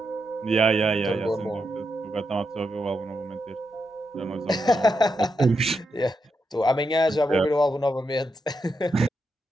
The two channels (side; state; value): both; normal; correlation 0.84